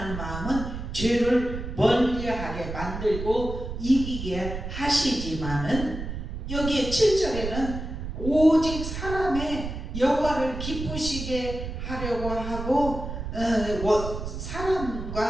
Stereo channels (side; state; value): right; noise; rumble, 7 dB below the sound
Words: 마음은 죄를 멀리하게 만들고 이기게 하시지만은 여기에 7절에는 오직 사람의 여호와를 기쁘시게 하려고 하고